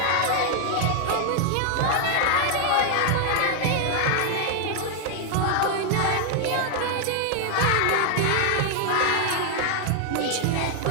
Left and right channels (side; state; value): both; different; correlation 0.00